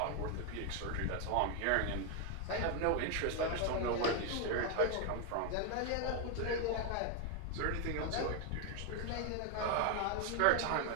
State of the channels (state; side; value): different; both; correlation 0.01